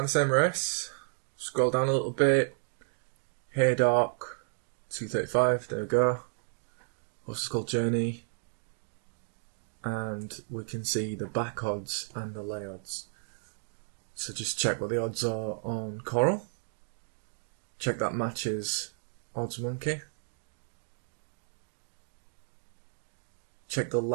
the same race. Scroll down a little bit. Haydock, 235, there we go. Horse is called Journey. And we can see the back odds and the lay odds. So just check what the odds are on Coral. Check that matches Odds Monkey. Check the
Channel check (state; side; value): silent; left; digital silence